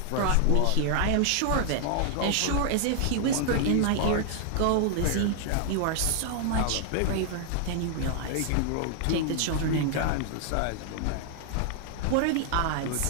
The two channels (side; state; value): both; different; correlation 0.00